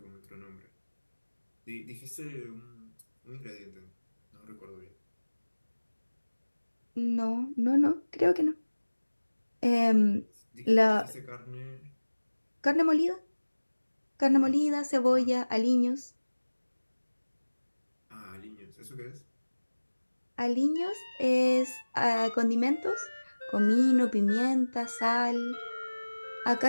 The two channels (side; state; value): both; inverted; correlation -1.00